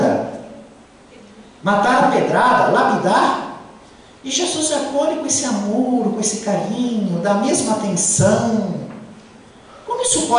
matar a pedrada, lapidar, e Jesus acolhe com esse amor, com esse carinho, dá a mesma atenção. Como isso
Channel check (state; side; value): identical; both; correlation 1.00